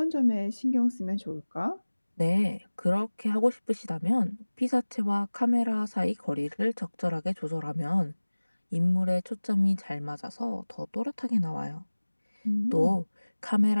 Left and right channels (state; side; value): inverted; both; correlation -1.00